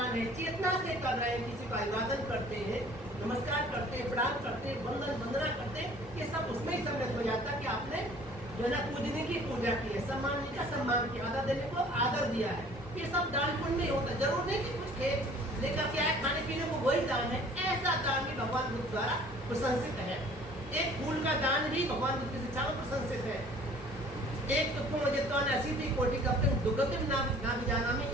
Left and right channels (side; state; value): both; normal; correlation 0.51